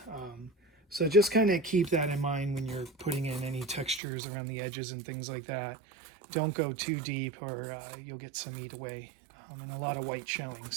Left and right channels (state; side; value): drops out; left; at 4.0 s